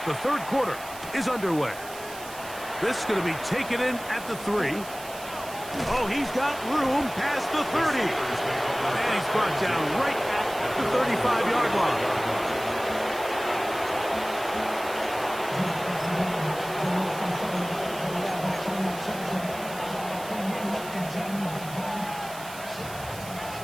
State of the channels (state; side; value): noise; right; hiss, 15 dB below the sound